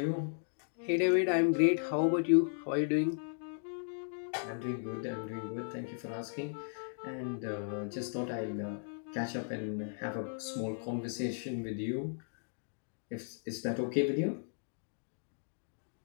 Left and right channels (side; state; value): right; silent; digital silence